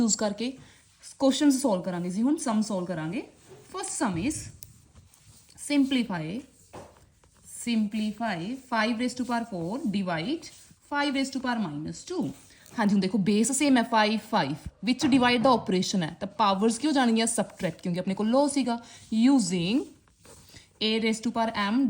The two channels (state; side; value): identical; both; correlation 1.00